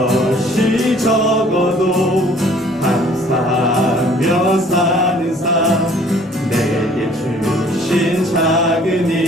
적어도 감사하며 사는 삶. 내게 주신 작은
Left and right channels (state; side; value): normal; both; correlation 0.55